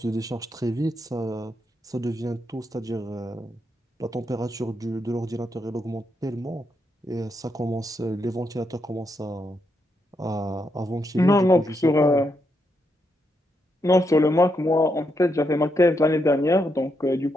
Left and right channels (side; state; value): both; normal; correlation 0.81